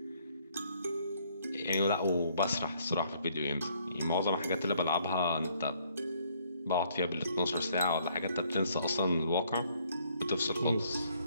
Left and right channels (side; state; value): both; inverted; correlation -0.66